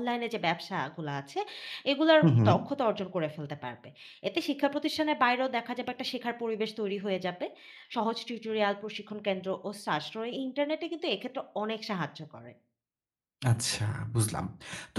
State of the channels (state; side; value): identical; both; correlation 1.00